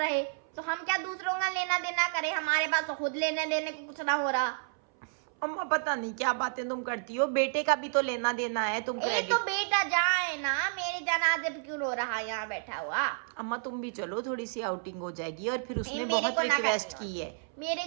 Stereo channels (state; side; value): silent; left; 57 dB below the other